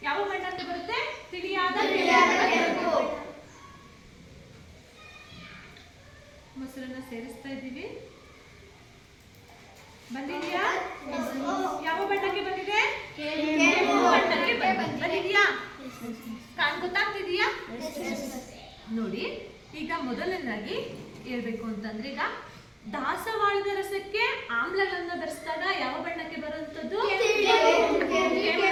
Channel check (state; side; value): identical; both; correlation 1.00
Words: ಯಾವ ಬಣ್ಣ ಅಂತ ಬರುತ್ತೆ? ತಿಳಿಯಾದ ಕೆಂಪು. ಮೊಸರನ್ನ ಸೇರಿಸ್ತಾ ಇದ್ದೀವಿ. ಬಂದಿದೆಯಾ? ಯಾವ ಬಣ್ಣಕ್ಕೆ ಬಂದಿದೆ? ಕೆಂಪು ಬಣ್ಣಕ್ಕೆ ಬಂದಿದೆಯಾ? ಗೊತ್ತಾಗ್ತಿದೆಯಾ? ನೋಡಿ, ಈಗ ಮೊದಲನೇದಾಗಿ ಹೇಳ್ಬೇಕು ಅಂತಂದ್ರೆ, ಈಗ ದಾಸವಾಳದ ರಸಕ್ಕೆ ಆಮ್ಲಗಳನ್ನ ಬೆರೆಸಿದಾಗ ಯಾವ ಬಣ್ಣಕ್ಕೆ ಬರುವಂತದ್ದು?